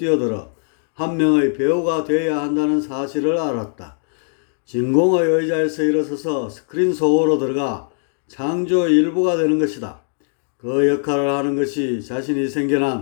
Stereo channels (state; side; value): silent; right; digital silence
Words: 한 명의 배우가 되어야 한다는 사실을 알았다. 진공의 의자에서 일어서서 스크린 속으로 들어가 창조의 일부가 되는 것이다. 그 역할을 하는 것이 자신이